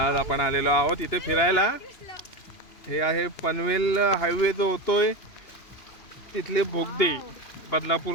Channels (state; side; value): late; right; 2.9 ms